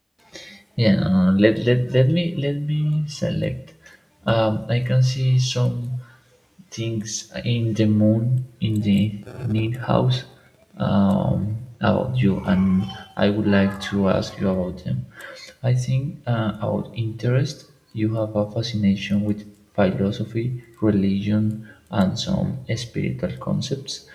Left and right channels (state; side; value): identical; both; correlation 1.00